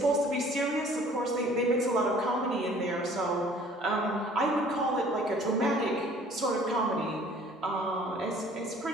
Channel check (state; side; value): normal; both; correlation 0.53